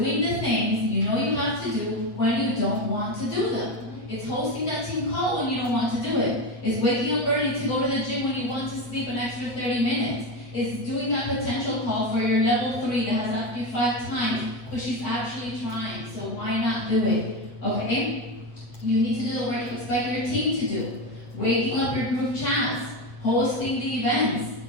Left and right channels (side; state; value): right; late; 8.2 ms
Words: the things you know you have to do when you don't want to do them. It's hosting that team call when you don't want to do it. It's waking up early to go to the gym when you want to sleep an extra 30 minutes. It's doing that potential call for your level 3 that has asked you 5 times, but she's actually trying, so why not do it? Okay? You need to do the work you expect your team to do. Waking up your group chats, hosting the events.